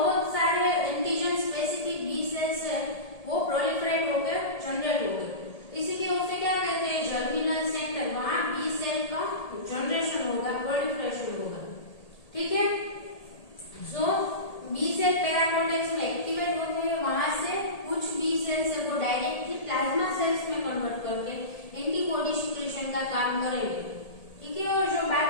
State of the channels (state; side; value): late; right; 1.8 ms